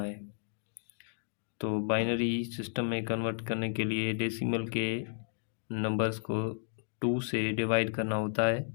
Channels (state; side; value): silent; right; digital silence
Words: है। तो बाइनरी सिस्टम में कन्वर्ट करने के लिए डेसिमल के नंबर्स को 2 से डिवाइड करना होता है।